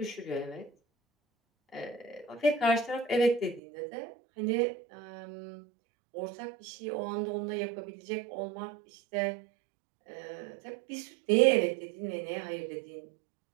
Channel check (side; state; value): left; drops out; at 3.6 s